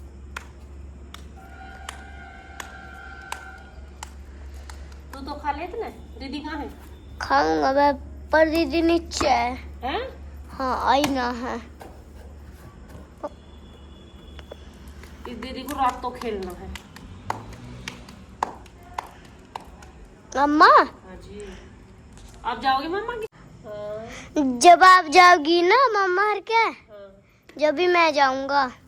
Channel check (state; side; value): identical; both; correlation 1.00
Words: तू तो खा लेते ना। दीदी कहाँ है? खाऊंगा मैं, पर दीदी नीचे है। हैं? हाँ आई ना है। इस दीदी को रात तो खेलना है। मम्मा हाँ जी, आप जाओगे मम्मा की? हाँ। जब आप जाओगी ना मम्मा हर क्या, हाँ। जब भी मैं जाऊंगा।